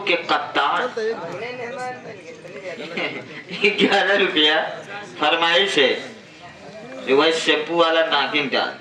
के कप्तान 11 रुपया फरमाइश है। वही शैम्पू वाला नागिन का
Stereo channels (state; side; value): identical; both; correlation 1.00